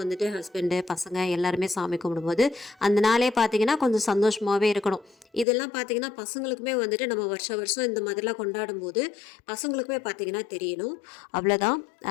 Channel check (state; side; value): drops out; right; at 5.5 s